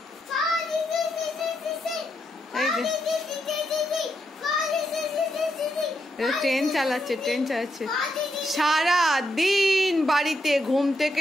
ট্রেন চালাচ্ছে, ট্রেন চালাচ্ছে। সারা দিন বাড়িতে ঘুম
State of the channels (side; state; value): both; normal; correlation 0.81